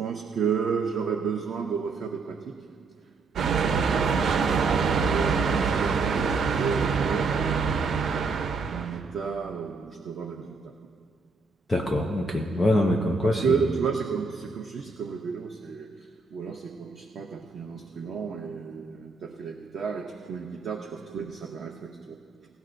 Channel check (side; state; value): left; quieter; 3.9 dB